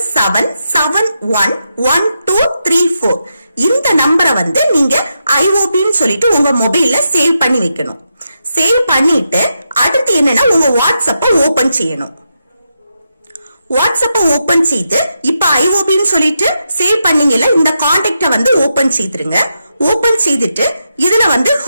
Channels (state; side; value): inverted; both; correlation -0.85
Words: இந்த நம்பரை வந்து நீங்க IOB ன்னு சொல்லிட்டு உங்க மொபைல்ல சேவ் பண்ணி வைக்கணும். சேவ் பண்ணிட்டு அடுத்து என்னன்னா உங்க வாட்ஸ்அப்ப ஓபன் செய்யணும். வாட்ஸ்அப்ப ஓபன் செய்து இப்ப IOB ன்னு சொல்லிட்டு சேவ் பண்ணீங்கல்ல, இந்த கான்டாக்ட வந்து ஓபன் செய்துருங்க. ஓபன் செய்துட்டு இதுல வந்து